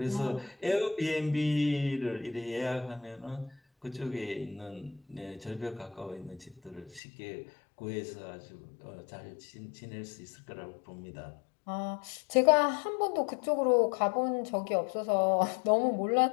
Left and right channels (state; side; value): drops out; right; at 7.0 s